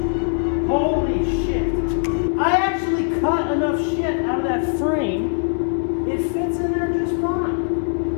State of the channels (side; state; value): right; silent; 58 dB below the other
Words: Holy shit. I actually cut enough shit out of that frame. It fits in there just fine.